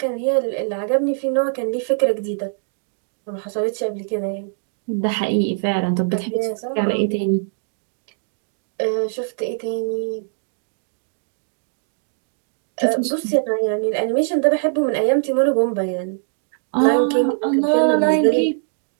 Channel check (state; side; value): silent; left; digital silence